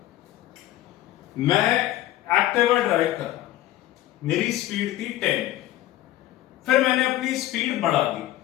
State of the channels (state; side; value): quieter; right; 14.6 dB